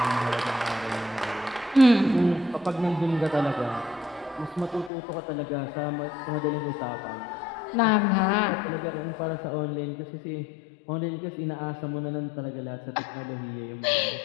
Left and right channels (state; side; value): drops out; right; at 4.9 s